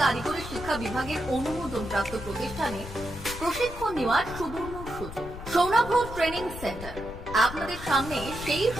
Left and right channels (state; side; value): noise; left; rumble, 11 dB below the sound